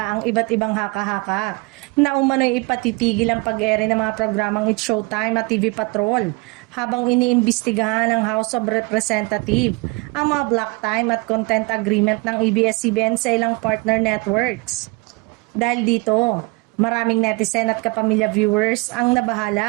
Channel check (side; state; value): left; quieter; 26.7 dB